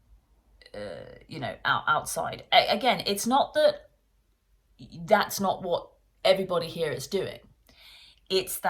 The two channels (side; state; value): both; identical; correlation 1.00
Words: outside. Again, it's not that that's not what everybody here is doing. It's